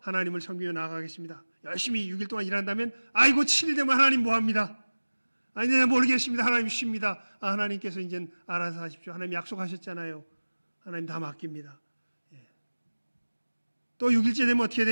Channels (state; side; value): inverted; both; correlation -1.00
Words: 하나님을 섬기며 나아가겠습니다. 열심히 6일 동안 일한다면 아이고 7일 되면 하나님 뭐합니다. 아니 내가 모르겠습니다. 하나님 쉽니다. 하나님께서 이제 알아서 하십시오. 하나님 약속하셨잖아요. 하나님 다 맡깁니다. 예. 또 6일째 되면 어떻게